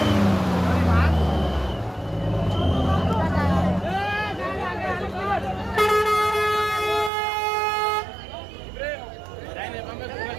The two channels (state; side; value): drops out; left; at 7.1 s